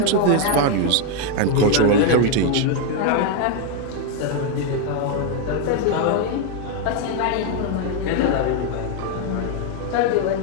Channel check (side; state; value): both; different; correlation 0.01